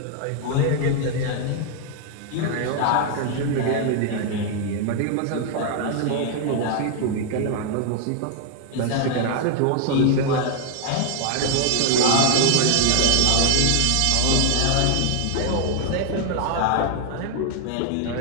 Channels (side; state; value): both; different; correlation 0.00